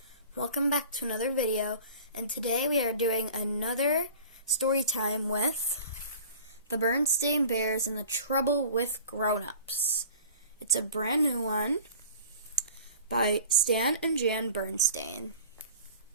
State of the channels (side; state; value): both; inverted; correlation -0.43